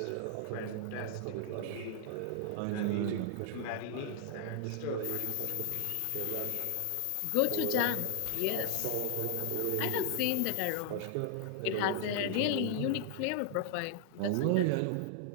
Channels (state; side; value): different; both; correlation 0.00